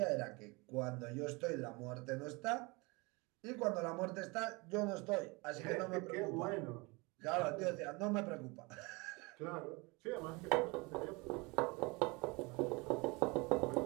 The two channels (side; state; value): left; quieter; 26.5 dB